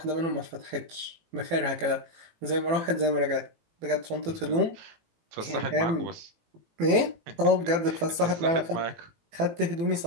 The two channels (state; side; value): late; left; 18 ms